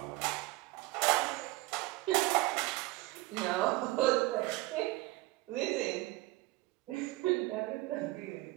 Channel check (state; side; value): quieter; left; 20.0 dB